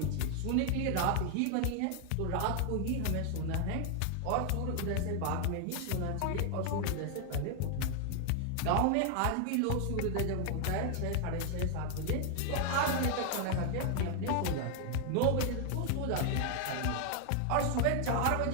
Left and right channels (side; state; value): both; different; correlation 0.00